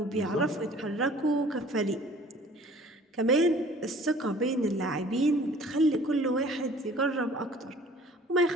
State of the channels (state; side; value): normal; both; correlation 0.51